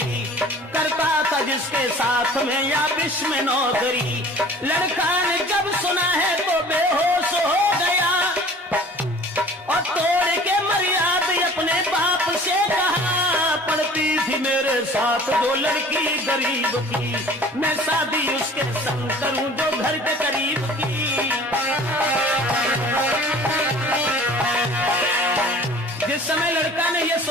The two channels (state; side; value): normal; both; correlation 0.47